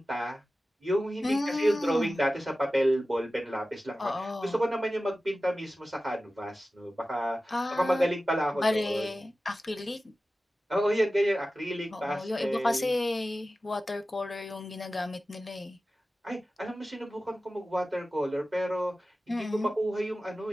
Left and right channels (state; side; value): normal; both; correlation 0.95